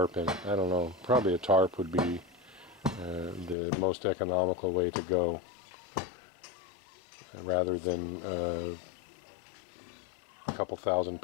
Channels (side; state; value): right; drops out; at 3.6 s